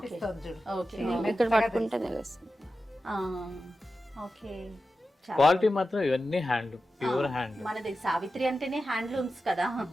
ఇక్కడ పట్టుకుంటే తెలుస్తుంది. ఓకే, క్వాలిటీ మాత్రం ఇవన్నీ హ్యాండ్లూమ్, ప్యూర్ హ్యాండ్లూమ్. మనది సావిత్రి అంటేనే హ్యాండ్లూమ్స్ కదా.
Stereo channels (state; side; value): normal; both; correlation 0.92